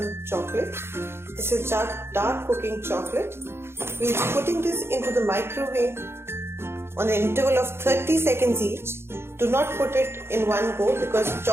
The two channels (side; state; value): left; late; 0.12 ms